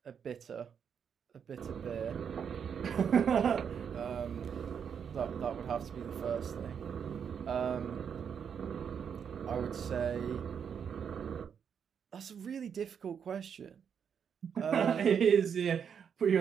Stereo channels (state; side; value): quieter; left; 7.4 dB